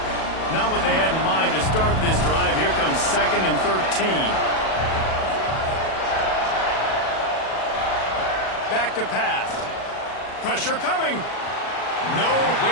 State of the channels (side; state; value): right; late; 37 ms